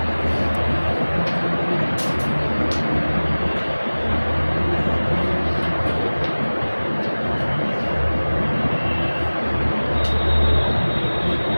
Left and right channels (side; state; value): both; inverted; correlation -1.00